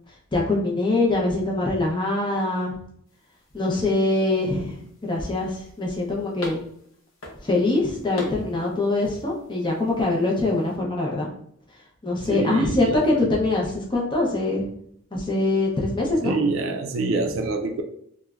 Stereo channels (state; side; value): normal; both; correlation 0.52